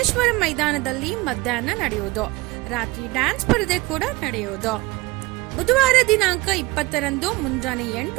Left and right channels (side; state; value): left; quieter; 22.3 dB